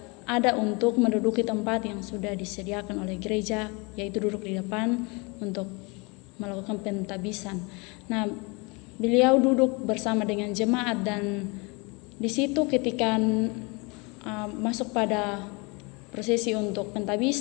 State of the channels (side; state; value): right; quieter; 28.9 dB